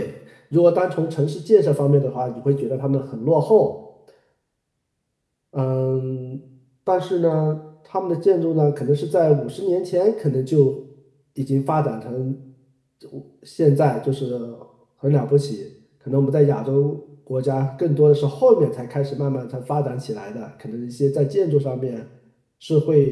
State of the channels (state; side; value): identical; both; correlation 1.00